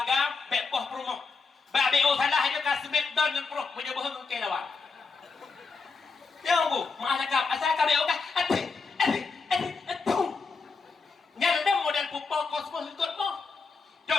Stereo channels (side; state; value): right; quieter; 4.6 dB